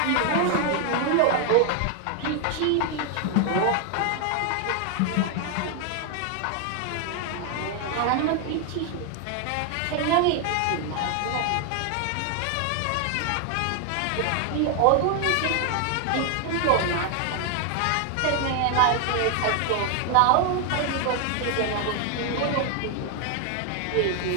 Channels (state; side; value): different; both; correlation 0.00